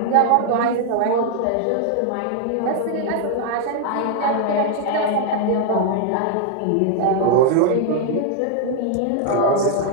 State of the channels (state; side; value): different; both; correlation 0.00